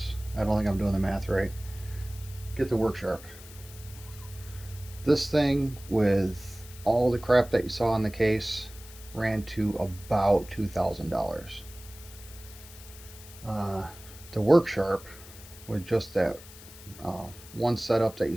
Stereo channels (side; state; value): left; noise; hiss, 18 dB below the sound